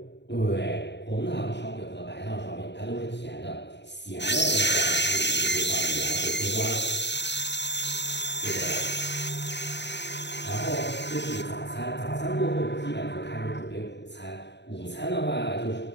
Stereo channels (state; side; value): late; right; 0.51 ms